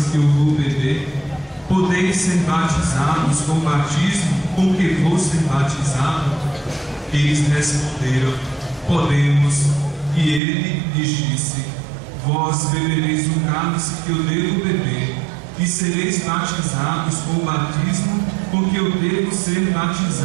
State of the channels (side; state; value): left; drops out; at 10.4 s